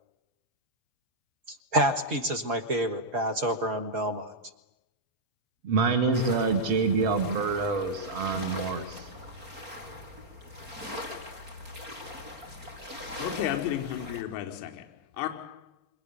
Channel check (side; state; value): left; late; 4.4 ms